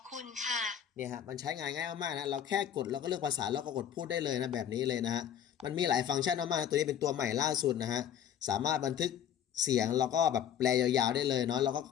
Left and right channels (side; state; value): right; quieter; 9.6 dB